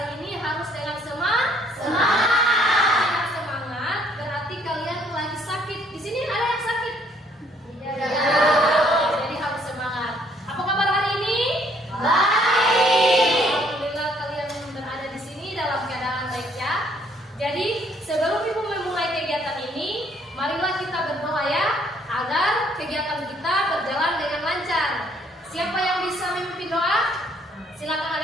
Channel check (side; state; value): both; normal; correlation 0.64